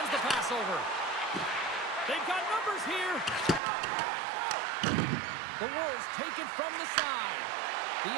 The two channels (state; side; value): drops out; left; at 3.6 s